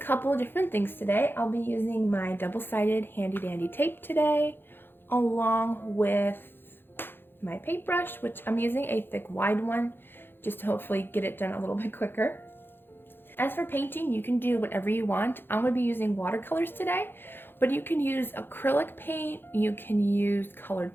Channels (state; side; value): late; right; 0.10 ms